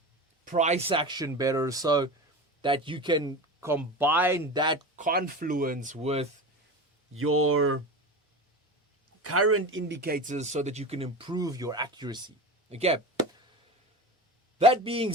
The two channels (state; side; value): normal; both; correlation 0.27